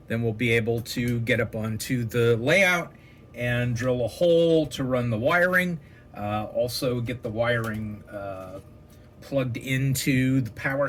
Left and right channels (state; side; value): identical; both; correlation 1.00